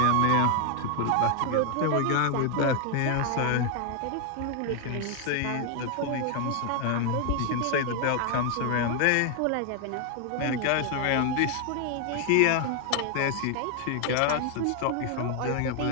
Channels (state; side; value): different; both; correlation 0.00